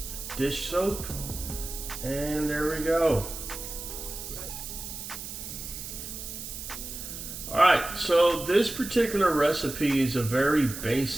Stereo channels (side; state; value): right; noise; hiss, 9 dB below the sound